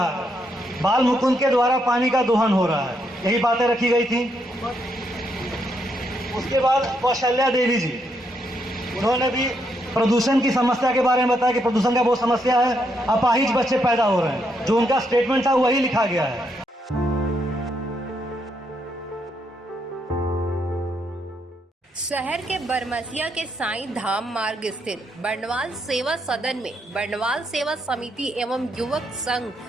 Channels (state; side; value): normal; both; correlation 0.77